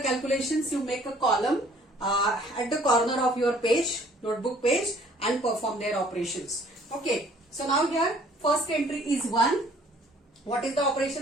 calculations, you make a column at the corner of your page, notebook page, and perform their operations. Okay. So now here first entry is 1. What is the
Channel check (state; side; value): normal; both; correlation 0.57